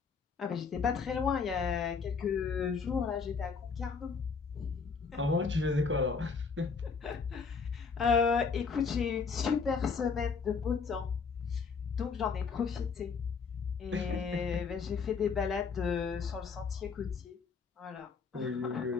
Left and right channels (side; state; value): right; quieter; 5.4 dB